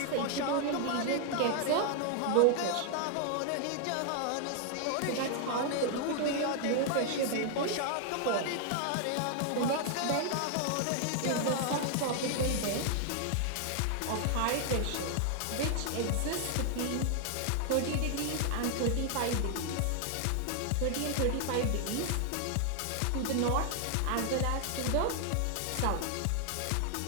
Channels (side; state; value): both; different; correlation 0.00